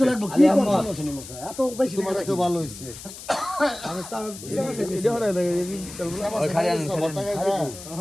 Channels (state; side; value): noise; left; hiss, 14 dB below the sound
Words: লাগবে কি করছ এত বেশি তোমার তো ভালো হইছে